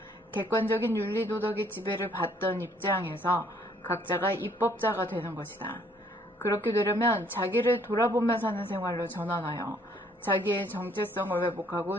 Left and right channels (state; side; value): normal; both; correlation 0.63